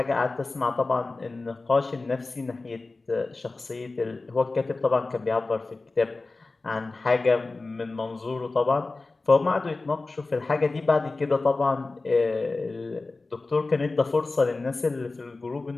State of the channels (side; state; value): right; quieter; 3.5 dB